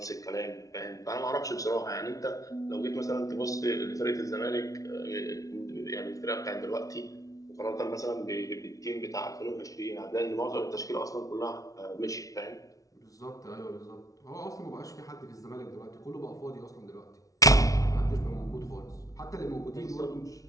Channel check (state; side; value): late; right; 0.17 ms